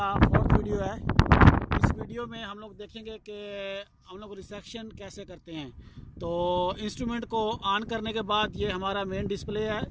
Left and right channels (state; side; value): identical; both; correlation 1.00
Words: 4th video है। इस वीडियो में हम लोग देखेंगे कि हम लोग रिसेक्शन कैसे करते हैं। तो इंस्ट्रूमेंट को ऑन करने के बाद ये हमारा मेन डिस्प्ले है।